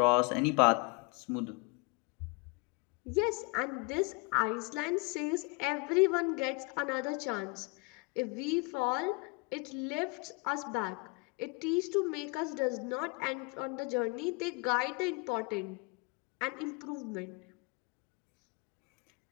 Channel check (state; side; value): quieter; right; 29.6 dB